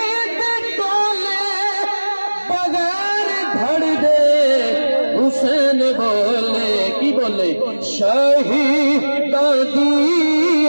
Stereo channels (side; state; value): both; inverted; correlation -1.00